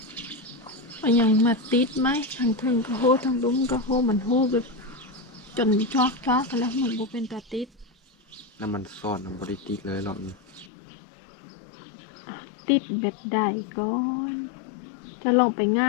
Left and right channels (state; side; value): drops out; right; at 10.7 s